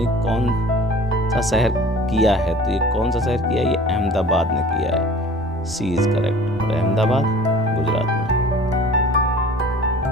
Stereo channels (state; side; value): normal; both; correlation 0.45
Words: कौन सा शहर किया है? तो ये कौन सा शहर किया है? ये अहमदाबाद ने किया है। सी इज करेक्ट। और अहमदाबाद गुजरात में।